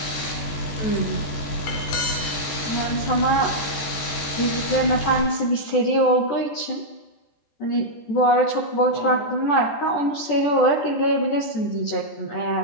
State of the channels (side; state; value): right; late; 14 ms